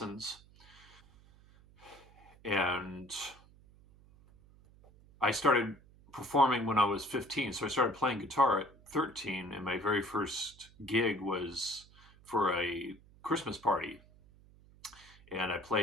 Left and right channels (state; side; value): noise; right; hum, 25 dB below the sound